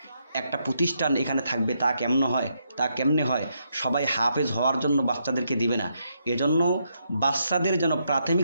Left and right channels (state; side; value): inverted; both; correlation -0.78